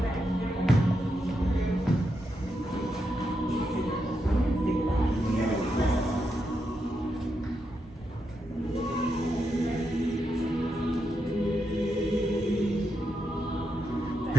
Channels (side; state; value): both; normal; correlation 0.84